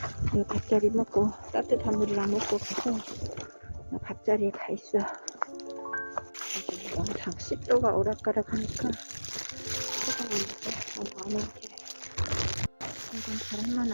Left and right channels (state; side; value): inverted; both; correlation -1.00